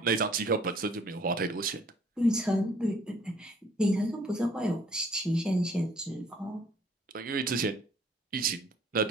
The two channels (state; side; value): normal; both; correlation 0.59